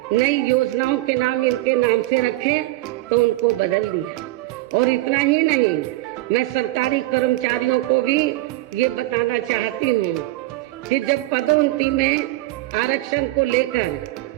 नई योजनाओं के नाम इनके नाम से रखे, तो उनको बदल दिया। और इतना ही नहीं, मैं सरकारी कर्मचारियों को भी ये बताना चाहती हूँ कि जब पदोन्नति में आरक्षण को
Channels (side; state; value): left; quieter; 18.7 dB